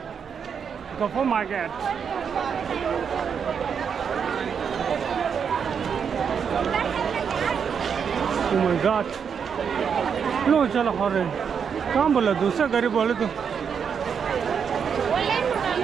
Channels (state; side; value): quieter; left; 6.9 dB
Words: गफो मार्केट Oh my God! लो चलो हरे कहाँ बोला दूसरा गरीब बोले तो